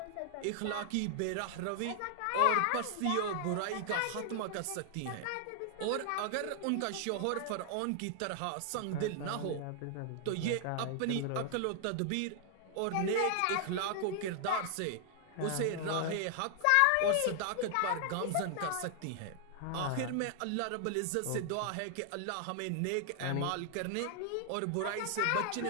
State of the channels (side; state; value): both; different; correlation 0.00